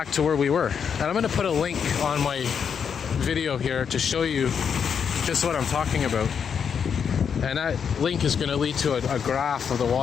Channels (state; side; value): quieter; right; 7.1 dB